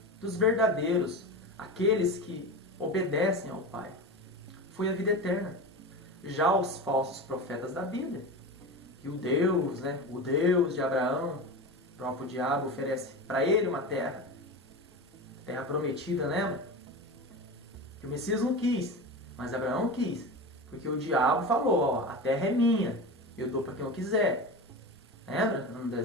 dos verdadeiros, aqueles que obedecem ao Pai, foi a vida eterna. Já os falsos profetas da Bíblia, que o Deus de Abraão, o próprio diabo, oferece para ele uma terra prometida, lembra? Que o Messias não quis, mas Abraão quis, porque o diabo falou, ó, a terra é minha, eu dou para quem eu quiser. Lembra? No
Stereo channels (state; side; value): normal; both; correlation 0.26